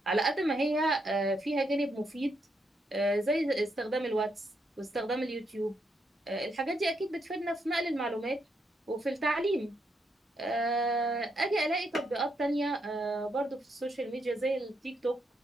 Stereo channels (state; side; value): normal; both; correlation 0.78